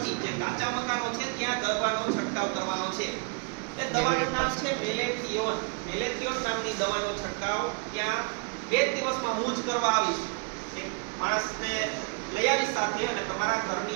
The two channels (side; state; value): left; quieter; 36.2 dB